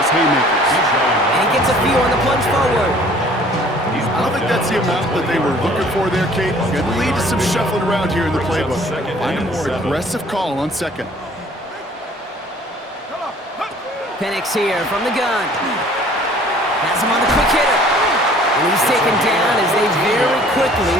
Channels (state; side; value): normal; both; correlation 0.53